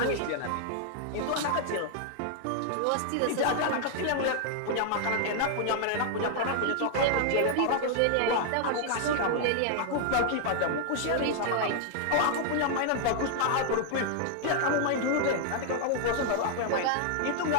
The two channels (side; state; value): both; different; correlation 0.00